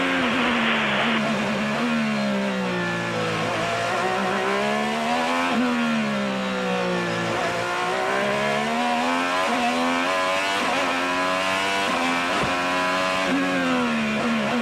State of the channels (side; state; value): both; identical; correlation 1.00